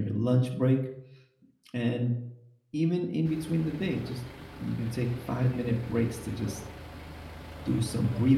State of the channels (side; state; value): both; identical; correlation 1.00